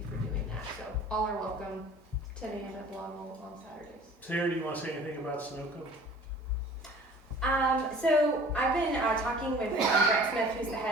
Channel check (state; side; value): normal; both; correlation 0.47